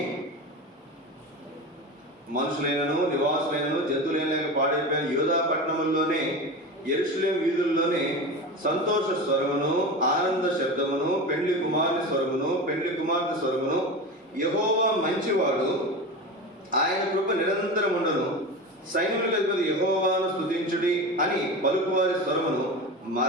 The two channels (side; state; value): both; normal; correlation 0.26